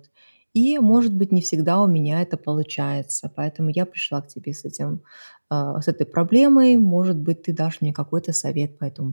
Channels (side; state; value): both; inverted; correlation -1.00